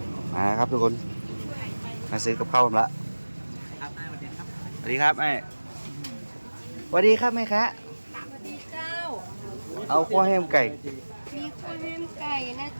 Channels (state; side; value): inverted; both; correlation -1.00